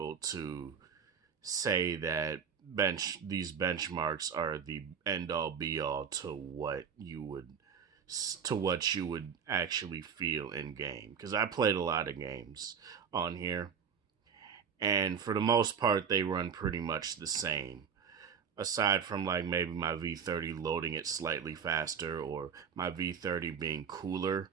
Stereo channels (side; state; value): left; quieter; 6.9 dB